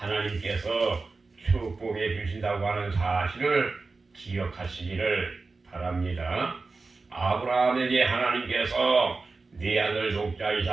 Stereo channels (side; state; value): left; quieter; 3.9 dB